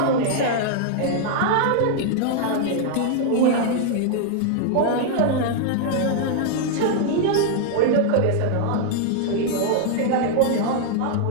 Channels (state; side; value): different; both; correlation 0.00